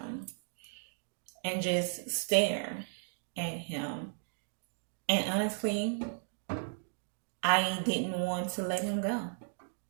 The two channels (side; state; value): left; silent; digital silence